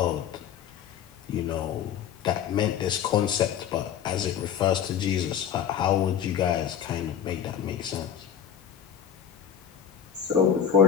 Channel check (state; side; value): quieter; right; 8.7 dB